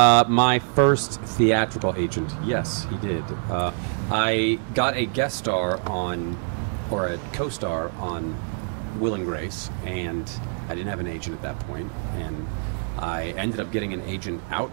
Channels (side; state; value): left; silent; 61 dB below the other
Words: my first theatrical agent, yes, he did. I got a guest star on, or a co-star on Will and Grace, and I didn't have an agent at that point, and I ended up getting an agent